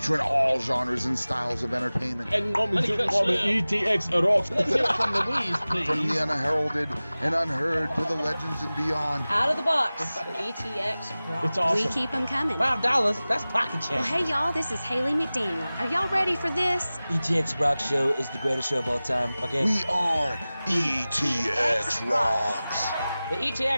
all genres and styles of entertainment. And coming to the ETX ROCKS. Let's hear it from Louise, please. From the unheralded and unheard to the legends and beyond. Out of the box with ETX ROCKS. It's awesome. We keep them coming. $5, that's pocket change. Well, hey, y'all, this is Haley McDaniel. Are y'all ready for this? ETX ROCKS Show is the greatest show of all time, okay? We are ETX ROCKS. The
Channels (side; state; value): both; inverted; correlation -0.98